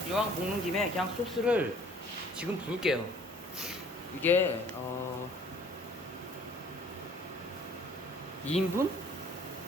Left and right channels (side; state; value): both; normal; correlation 0.55